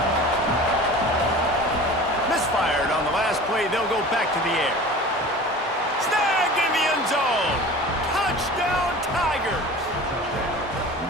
Misfired on the last play. They'll go back to the air. Snagged in the end zone. Touchdown, Tigers.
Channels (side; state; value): both; normal; correlation 0.39